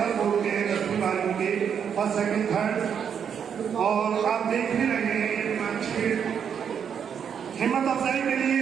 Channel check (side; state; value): left; quieter; 7.7 dB